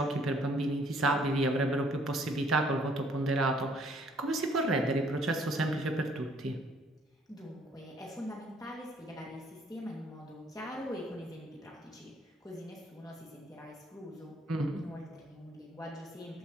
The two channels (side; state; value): both; normal; correlation 0.63